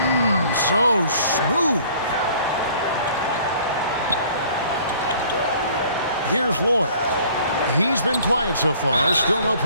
So smooth. Here's Lloyd. He's been quiet so far. Still no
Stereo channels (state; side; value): inverted; both; correlation -0.54